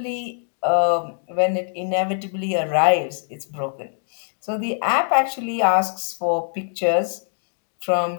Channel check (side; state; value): right; silent; digital silence